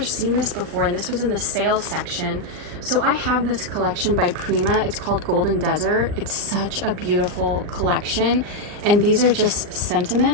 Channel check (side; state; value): left; late; 39 ms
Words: seen this before, and this was in the sales section. So I have this collection by Prima. It's called Golden Desert. It's such a beautiful collection, and these are just